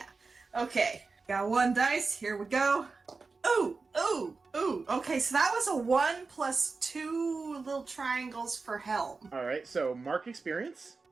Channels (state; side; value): quieter; left; 4.2 dB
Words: Okay, got 1 dice. Here we go. Ooh. Okay, so that was a 1 plus 2 little triangles for helm. All right, so mark experience.